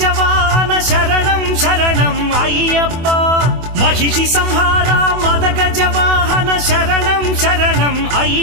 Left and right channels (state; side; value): late; left; 24 ms